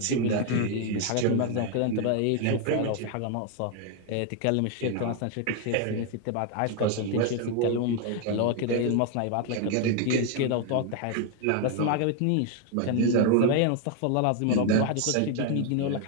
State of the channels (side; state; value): both; different; correlation 0.01